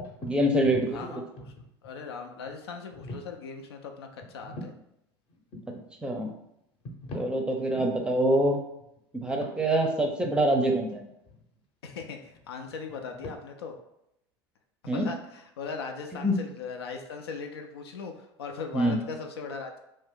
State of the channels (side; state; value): both; normal; correlation 0.56